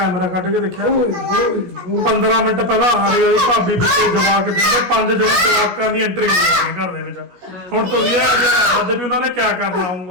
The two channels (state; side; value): late; left; 17 ms